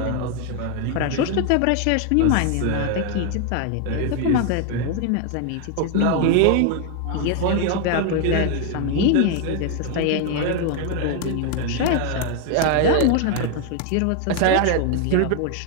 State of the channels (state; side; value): different; both; correlation 0.01